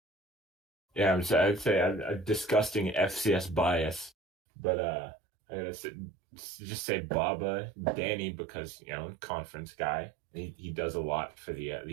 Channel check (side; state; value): left; drops out; at 4.1 s